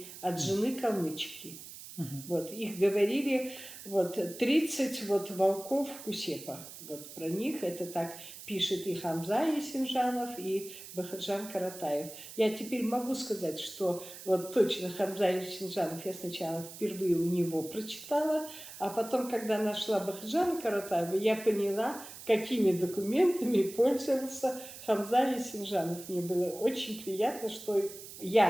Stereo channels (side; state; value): right; noise; hiss, 14 dB below the sound